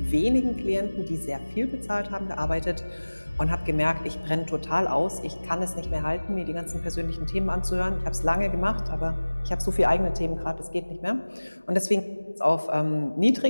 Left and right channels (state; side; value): inverted; both; correlation -1.00